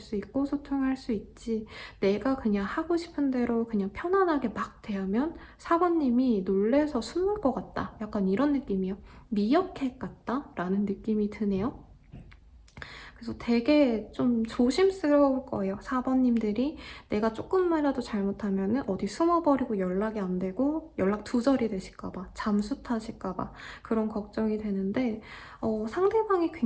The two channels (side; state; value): both; identical; correlation 1.00